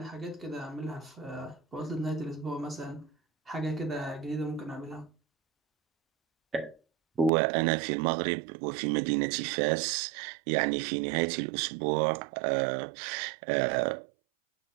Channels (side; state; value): left; drops out; at 7.3 s